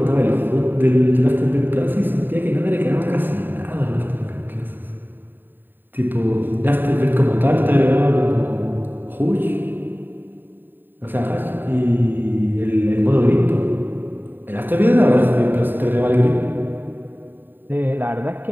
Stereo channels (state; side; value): late; left; 0.093 ms